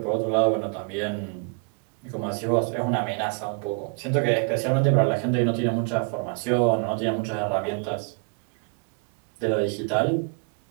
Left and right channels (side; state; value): left; quieter; 38.8 dB